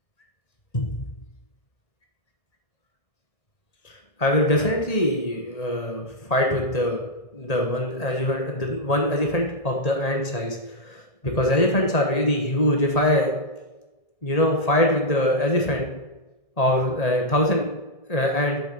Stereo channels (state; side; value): late; right; 1.8 ms